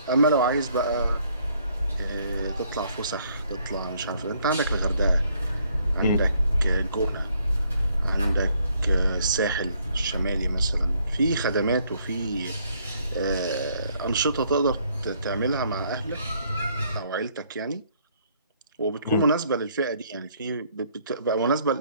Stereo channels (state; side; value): inverted; both; correlation -0.67